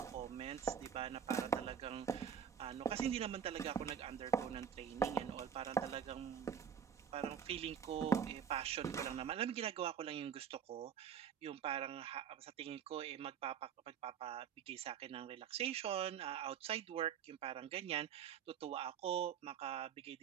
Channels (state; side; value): quieter; left; 8.1 dB